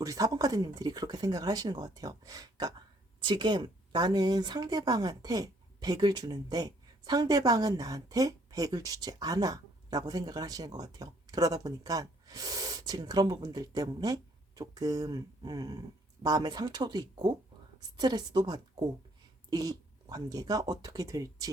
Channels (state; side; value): normal; both; correlation 0.64